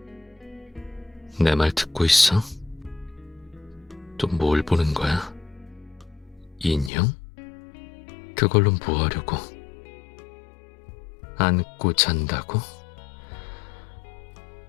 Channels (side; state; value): right; drops out; at 6.9 s